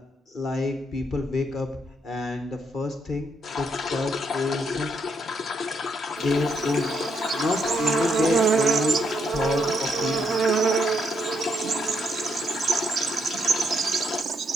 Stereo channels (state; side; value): normal; both; correlation 0.76